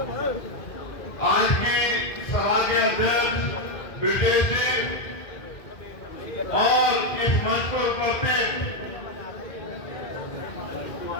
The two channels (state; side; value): late; right; 2.0 ms